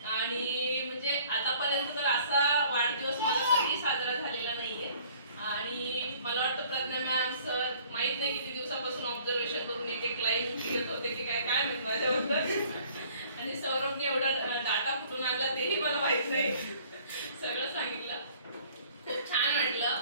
आणि म्हणजे आतापर्यंत तर असा वाढदिवस मला कधी साजरा झालेला नाहीये आणि मला वाटतं प्रज्ञा मॅम सर माहित नाही किती दिवसापासून ऑब्झर्वेशन करून एक लाईन घेत होते की काय काय म्हणतो माझ्याबद्दल आणि सौरभने एवढा डाटा कुठून आणला तेही मला माहित नाही सगळं सांगितलं खूप छान वाटलं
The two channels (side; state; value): both; inverted; correlation -0.55